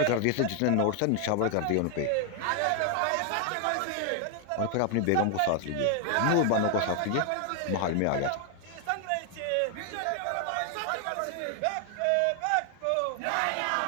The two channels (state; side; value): different; both; correlation 0.00